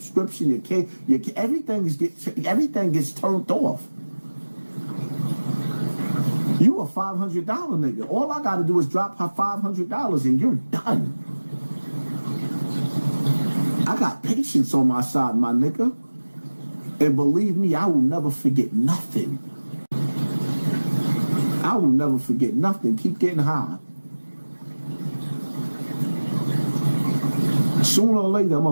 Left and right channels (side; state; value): both; inverted; correlation -1.00